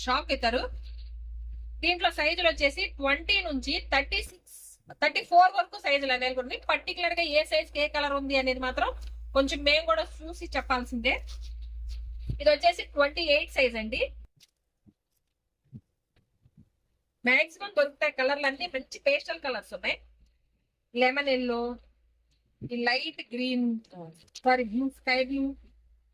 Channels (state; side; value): identical; both; correlation 1.00